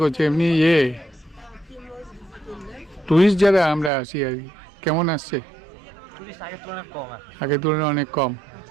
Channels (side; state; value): left; drops out; at 3.9 s